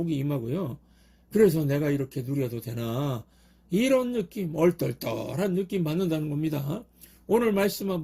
임하고요. 그래서 내가 이렇게 누려도 되나 이런 느낌, 얼떨떨한 느낌 받는다는 겁니다. 오늘 말씀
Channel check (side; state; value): both; identical; correlation 1.00